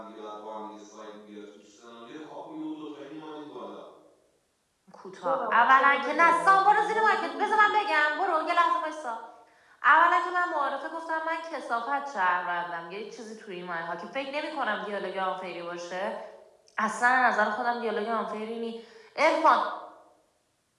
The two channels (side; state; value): both; identical; correlation 1.00